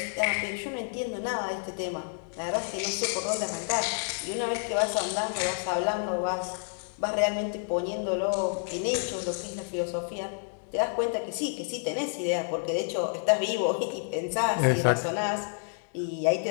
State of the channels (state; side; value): silent; right; digital silence